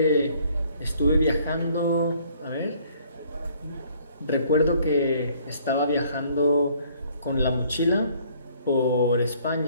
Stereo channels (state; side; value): inverted; both; correlation -0.61